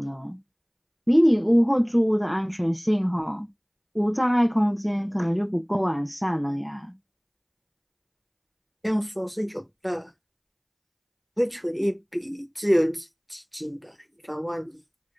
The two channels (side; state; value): both; identical; correlation 1.00